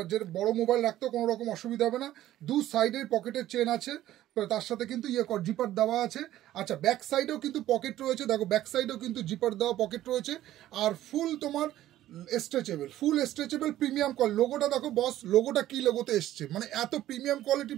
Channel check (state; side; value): quieter; left; 13.7 dB